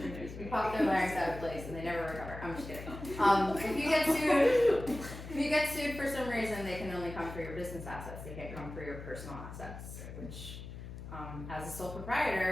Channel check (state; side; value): noise; left; hum, 11 dB below the sound